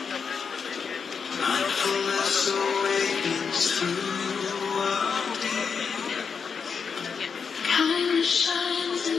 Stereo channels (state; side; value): quieter; right; 5.9 dB